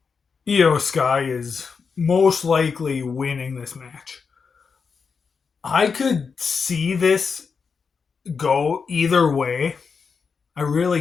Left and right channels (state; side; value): quieter; right; 5.5 dB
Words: Io Sky is most likely winning this match. I could see this go either way. I